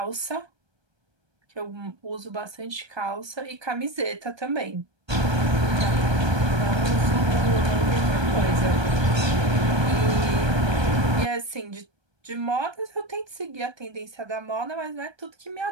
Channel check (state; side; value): late; left; 1.2 ms